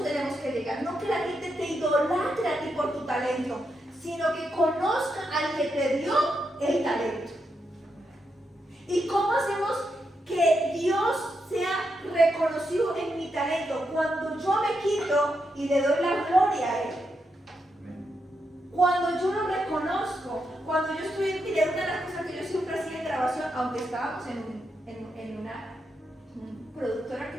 tenemos que llegar, no que la gente te idolatre a ti por tu talento, sino que conozca al que te dio el talento. ¿Y cómo hacemos que Dios sea reconocido en mi talento? Cuando yo me quito y le doy la gloria a Él. Cuando yo lo reconozco, cuando yo estoy en una de las cosas que yo siempre hacía en grabación, aunque estábamos en una productora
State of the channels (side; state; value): both; normal; correlation 0.83